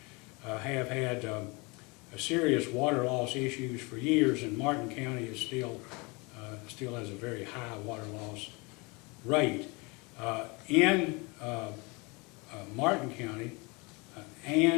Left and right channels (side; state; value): right; quieter; 27.9 dB